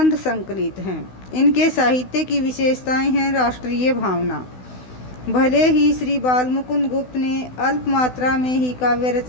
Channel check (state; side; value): late; right; 16 ms